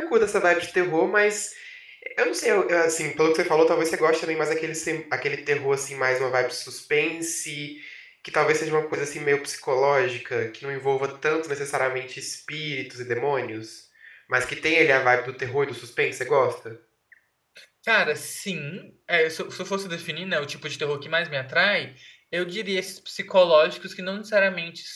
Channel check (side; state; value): both; identical; correlation 1.00